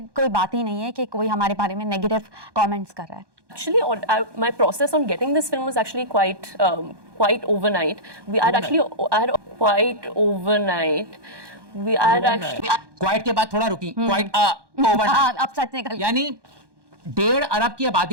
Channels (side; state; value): left; late; 1.2 ms